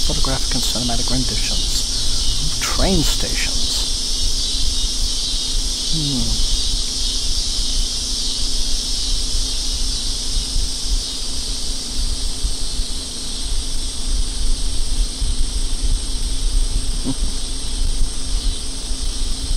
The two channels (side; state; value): both; identical; correlation 1.00